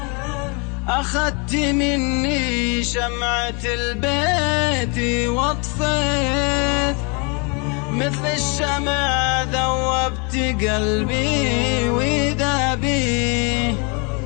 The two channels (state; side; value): quieter; right; 33.2 dB